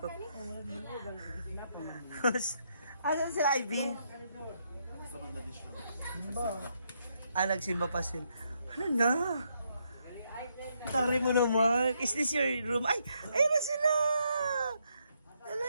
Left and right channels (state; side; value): inverted; both; correlation -0.76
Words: Asan sila, Ivy? Nagsimba pa sila. Ano na? Tari mo naman. Is this your room? Ay! Ayun na sila! Ala,